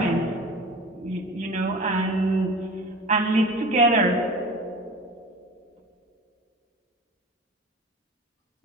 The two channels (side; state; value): both; normal; correlation 0.38